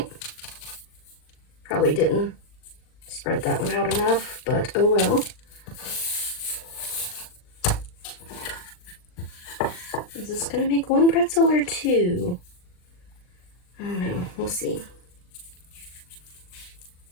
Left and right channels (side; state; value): right; late; 39 ms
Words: Probably didn't spread that one out enough, but oh well. Is this gonna make 1 pretzel or 2? I don't know. We'll see.